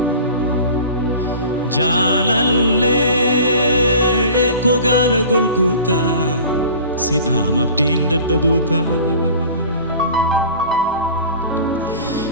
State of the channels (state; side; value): inverted; both; correlation -0.42